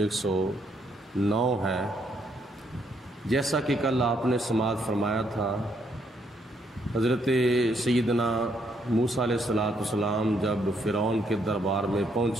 ہے۔ جیسا کہ کل آپ نے سماعت فرمایا تھا، حضرت سیدنا موسیٰ علیہ السلام جب فرعون کے دربار میں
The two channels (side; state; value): both; normal; correlation 0.73